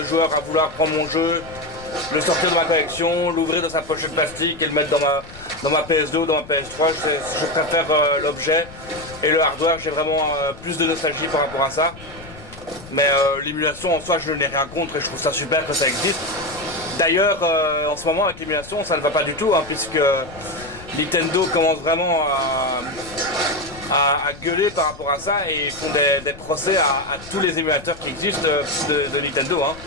joueur à vouloir prendre mon jeu, le sortir de ma collection, l'ouvrir dans sa pochette plastique et le mettre dans ma PS2 ou dans ma PS3. Je préfère l'objet et le hardware, j'ai vraiment plus de nostalgie par rapport à ça. Mais l'émulation en soi je n'ai rien contre et je trouve ça super que ça existe. D'ailleurs en ce moment avec l'émulation ça ne va pas du tout hein, puisque Nintendo commence vraiment à gueuler par rapport à ça et ils font des procès à tous les émulateurs qui existent de Nintendo. Hein.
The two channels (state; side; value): noise; left; rumble, 18 dB below the sound